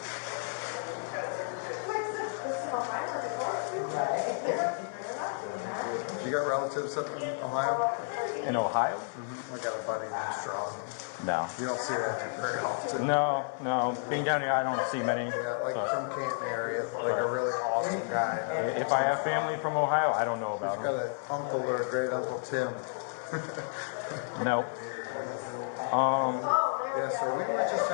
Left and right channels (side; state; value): right; silent; 57 dB below the other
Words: You got relatives up in Ohio? In Ohio? I got a buddy named Strong. No. You don't see that very often. No. Being down here, I don't see many. Yeah, like but from Canton area, like a really awesome guy. if I have family from Ohio, I don't know He's about got him. an uncle or a great uncle Tim. No. Yeah, so we were just